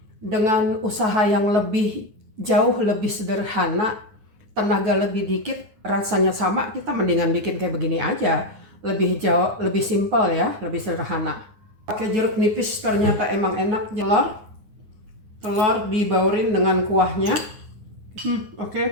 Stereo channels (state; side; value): late; left; 9.6 ms